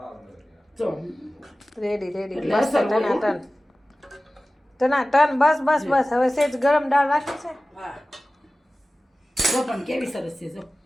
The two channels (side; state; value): both; normal; correlation 0.97